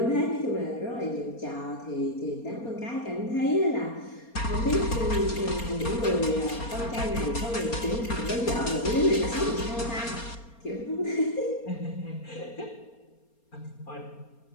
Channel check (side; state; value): right; late; 4.3 ms